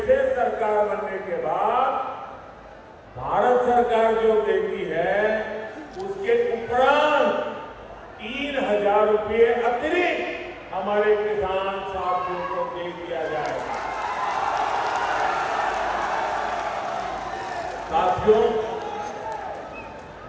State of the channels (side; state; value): both; identical; correlation 1.00